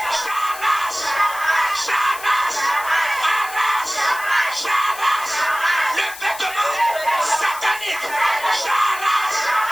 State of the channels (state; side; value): noise; left; hiss, 14 dB below the sound